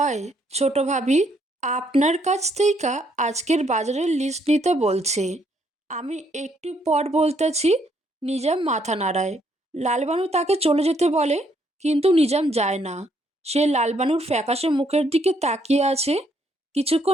ছোট ভাবি, আপনার কাছ থেকে আজকের বাজারের লিস্ট নিতে বলছে। আমি একটু পর বলতেছি। নিজাম মাথা নাড়ায়। লালবানু তাকে চলে যেতে বলে, কিন্তু নিজাম যায় না। সে লালবানুর ফ্যাকাশে মুখের দিকে তাকিয়ে আছে।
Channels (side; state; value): both; normal; correlation 0.71